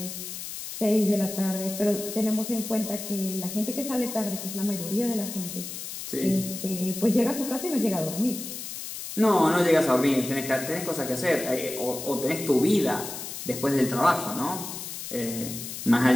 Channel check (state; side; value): noise; left; hiss, 8 dB below the sound